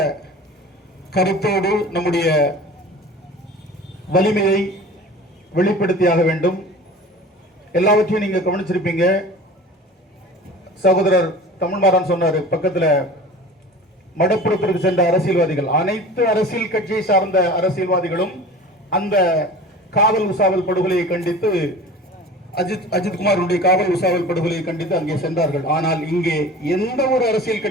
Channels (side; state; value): both; normal; correlation 0.39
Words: கருத்தோடு நம்முடைய வலிமையை வெளிப்படுத்தியாக வேண்டும். எல்லாவற்றையும் நீங்க கவனிச்சிருப்பீங்க. சகோதரர் தமிழ்மாறன் சொன்னாரு, பக்கத்துல மடப்புறத்திற்கு சென்ற அரசியல்வாதிகள், அனைத்து அரசியல் கட்சியை சார்ந்த அரசியல்வாதிகளும் அந்த காவல் உசாவல் படுகொலையை கண்டித்து, அஜித்குமாருடைய காவல் உசாவல் படுகொலையை கண்டித்து அங்கே சென்றார்கள். ஆனால் இங்கே எந்த ஒரு அரசியல்